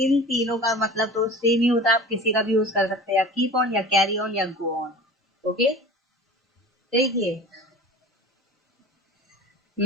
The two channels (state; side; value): normal; both; correlation 0.38